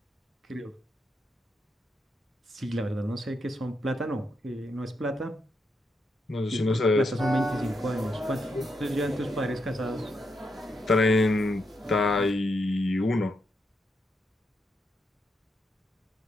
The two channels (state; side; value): normal; both; correlation 0.81